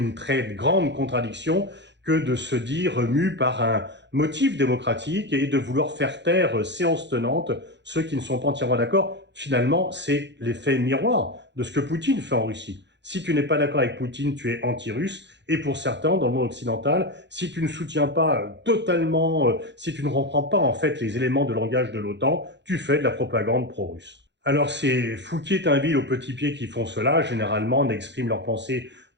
très grande contradiction que de se dire mu par un motif démocratique et de vouloir faire taire séance tenante ceux qui ne sont pas entièrement d'accord. Finalement, c'est l'effet miroir de ce que Poutine fait en Russie. Si tu n'es pas d'accord avec Poutine, tu es anti-russe. Et pour certains, dans le monde occidental, si tu ne soutiens pas totalement, si tu ne reprends pas en fait les éléments de langage de l'OTAN, tu fais de la propagande pro-russe. Alors c'est Fouquier-Tinville aux petits pieds qui font cela, généralement n'expriment leur pensée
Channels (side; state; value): left; late; 0.52 ms